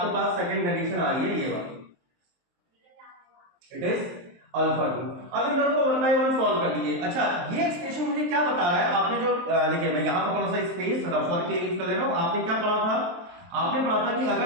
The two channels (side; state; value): left; late; 23 ms